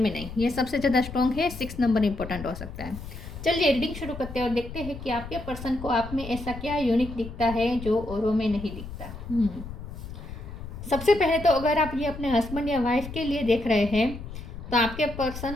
ये सबसे ज़्यादा स्ट्रॉन्ग है। 6 नंबर इंपॉर्टेंट हो सकता है। चलिए रीडिंग शुरू करते हैं और देखते हैं कि आपके पर्सन को आप में ऐसा क्या यूनिक दिखता है जो औरों में नहीं दिखता। सबसे पहले तो अगर आप ये अपने हस्बैंड या वाइफ के लिए देख रहे हैं तो आपके पर्सन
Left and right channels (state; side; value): noise; left; rumble, 11 dB below the sound